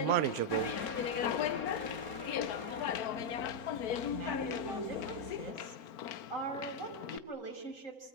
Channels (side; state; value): right; late; 4.5 ms